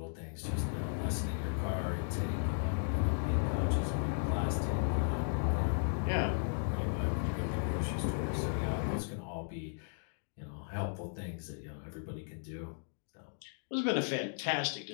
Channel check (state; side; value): silent; right; digital silence